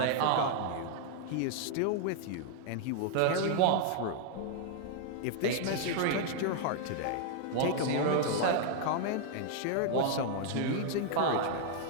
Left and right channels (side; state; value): both; different; correlation 0.00